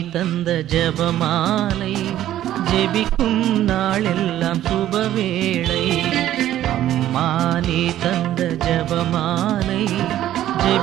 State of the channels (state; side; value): quieter; left; 12.7 dB